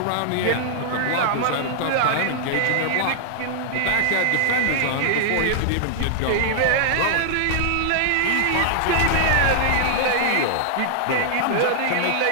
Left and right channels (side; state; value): both; different; correlation 0.00